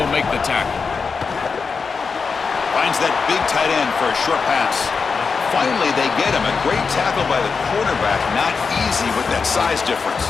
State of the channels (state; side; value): quieter; right; 5.1 dB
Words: make the tackle. Finds that big tight end for a short pass. Finally, they get him. A great tackle by the quarterback. Not easy with that size difference.